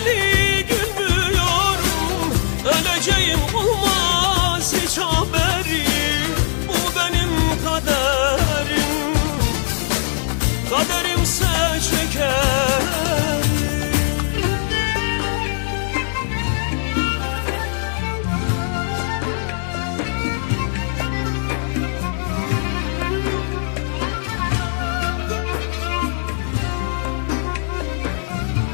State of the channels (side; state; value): right; silent; digital silence